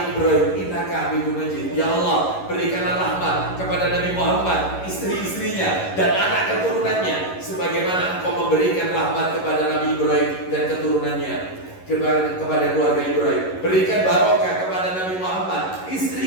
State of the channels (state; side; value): late; right; 11 ms